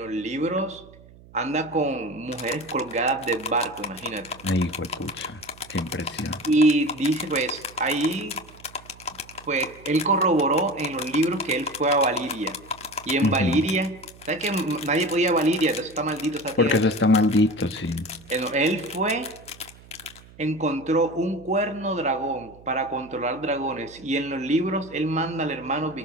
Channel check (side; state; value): right; noise; hum, 22 dB below the sound